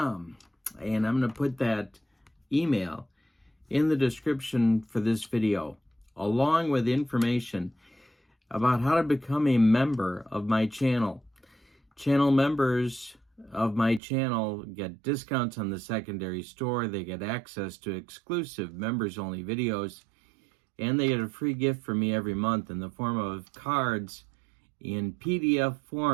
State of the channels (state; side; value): drops out; left; at 14.0 s